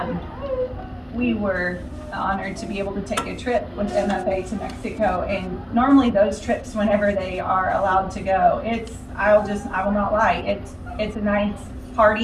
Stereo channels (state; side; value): identical; both; correlation 1.00